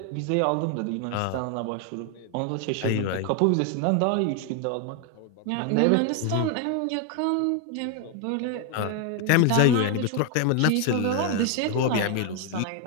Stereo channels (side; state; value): both; different; correlation 0.01